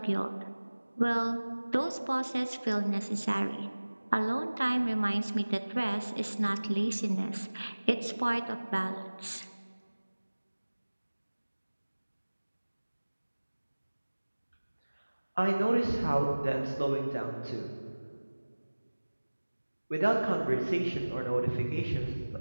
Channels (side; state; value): both; inverted; correlation -1.00